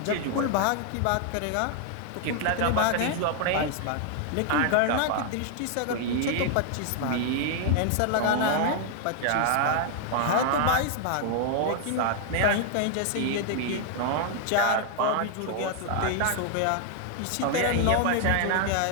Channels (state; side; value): different; both; correlation 0.00